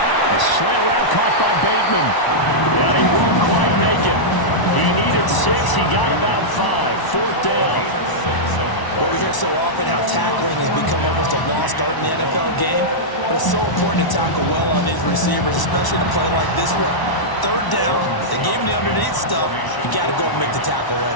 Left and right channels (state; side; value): late; right; 1.0 ms